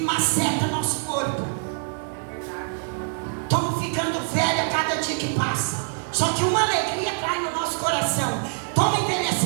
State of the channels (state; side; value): silent; left; 62 dB below the other